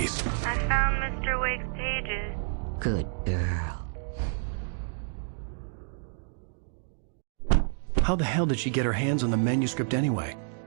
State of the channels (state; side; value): silent; left; digital silence